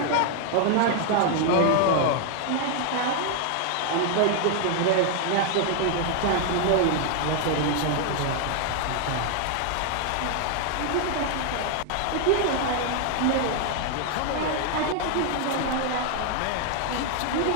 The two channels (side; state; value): both; different; correlation 0.00